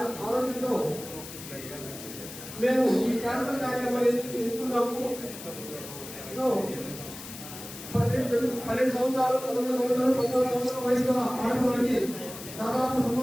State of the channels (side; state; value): left; noise; hiss, 12 dB below the sound